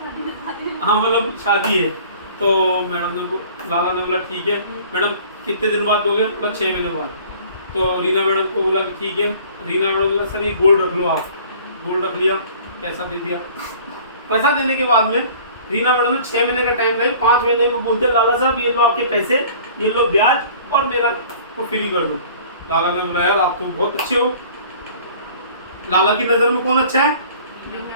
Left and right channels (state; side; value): inverted; both; correlation -0.49